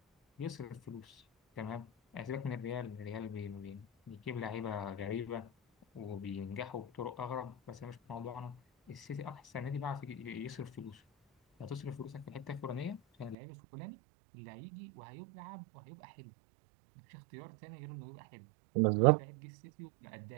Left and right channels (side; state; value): left; drops out; at 13.4 s